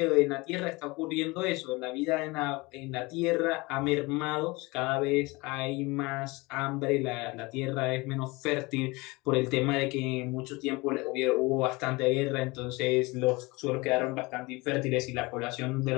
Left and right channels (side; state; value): right; quieter; 24.0 dB